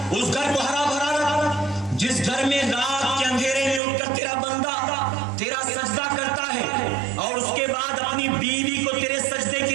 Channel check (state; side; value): drops out; left; at 3.8 s